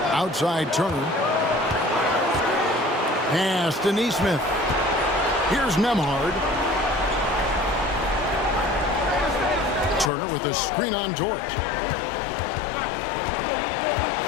Outside Turner. Pass to Neesmith. Here's Nembhard. Turner with a screen on Dort.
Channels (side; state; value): right; drops out; at 10.1 s